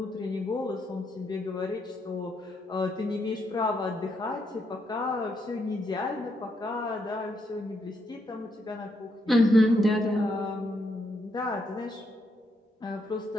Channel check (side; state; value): both; normal; correlation 0.77